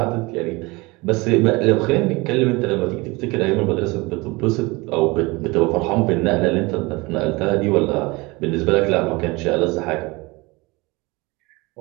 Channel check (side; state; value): left; quieter; 24.1 dB